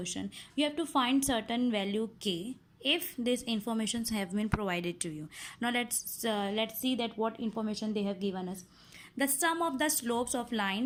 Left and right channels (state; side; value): identical; both; correlation 1.00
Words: You have to find certain value k if these informations have been provided to you. Now let's see that what information they have given us. The sum of the slopes of